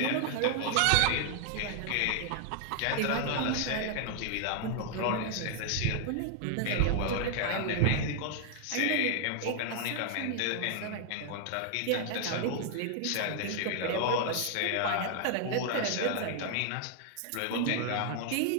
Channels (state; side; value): different; both; correlation 0.00